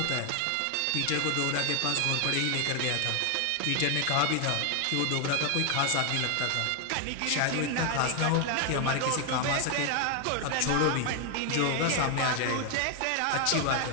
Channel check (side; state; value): both; different; correlation 0.00